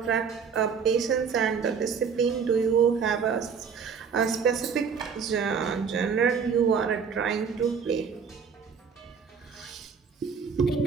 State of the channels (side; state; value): left; quieter; 6.2 dB